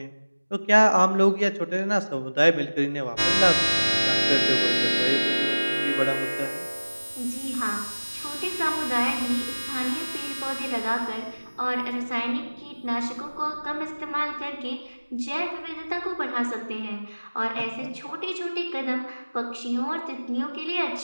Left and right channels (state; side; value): inverted; both; correlation -1.00